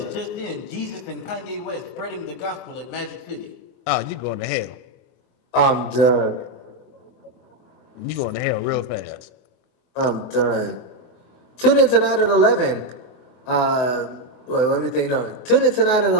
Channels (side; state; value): right; late; 23 ms